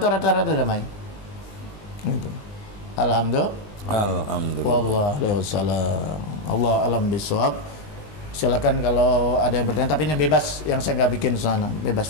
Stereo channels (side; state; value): right; late; 20 ms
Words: rata-rata damai. Gitu. Alhamdulillah. Waalaikumsalam. Allah alam bisawab. Silakan kalau ada yang bertanya, tapi ini bebas, yang saya nggak bikin sana,